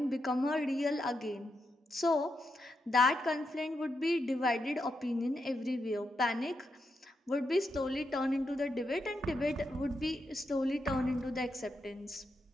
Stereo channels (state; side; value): normal; both; correlation 0.84